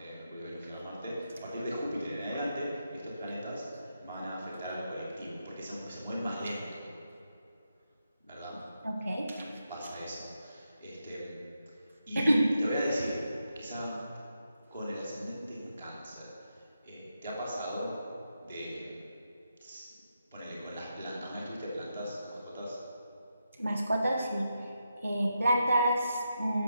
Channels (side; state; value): both; inverted; correlation -0.85